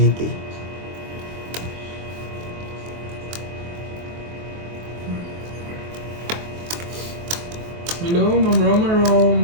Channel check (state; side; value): late; left; 23 ms